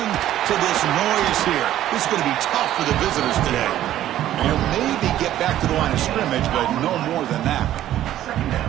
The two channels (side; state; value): left; quieter; 12.7 dB